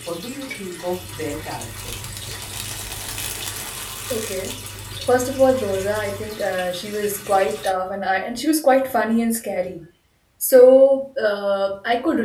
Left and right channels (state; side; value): identical; both; correlation 1.00